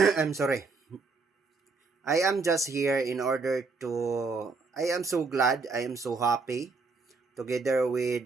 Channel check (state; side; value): quieter; left; 4.2 dB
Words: I'm sorry. I am just here in order to I am so glad, I am so happy together